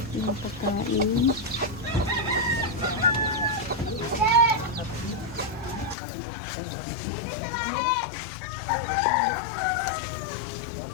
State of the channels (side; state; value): right; drops out; at 6.0 s